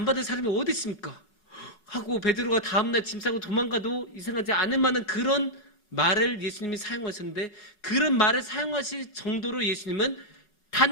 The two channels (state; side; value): late; right; 4.8 ms